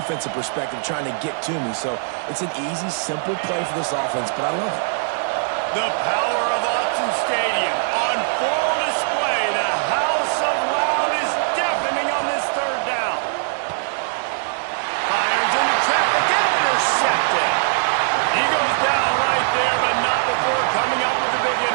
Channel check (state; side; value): silent; left; digital silence